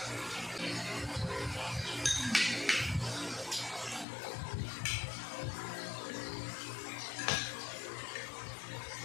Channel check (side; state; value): right; drops out; at 4.0 s